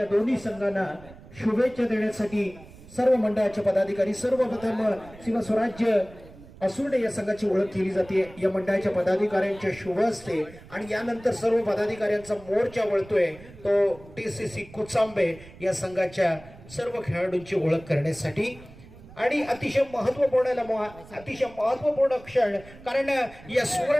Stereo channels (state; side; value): noise; right; rumble, 20 dB below the sound